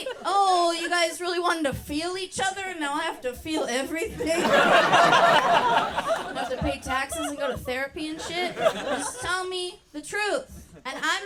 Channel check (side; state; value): both; identical; correlation 1.00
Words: Oh, you guys really wanted to feel each other, and now I have to feel everything? I have to pay taxes and go to therapy and shit? Just tell me the truth. And